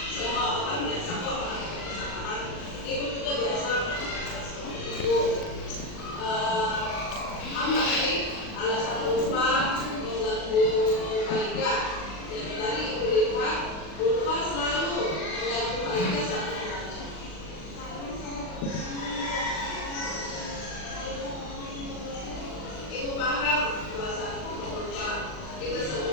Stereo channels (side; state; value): right; late; 39 ms